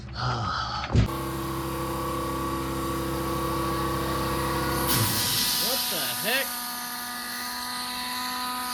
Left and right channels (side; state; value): both; identical; correlation 1.00